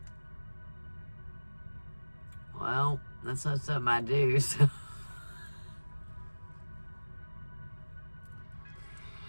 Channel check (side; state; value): both; inverted; correlation -1.00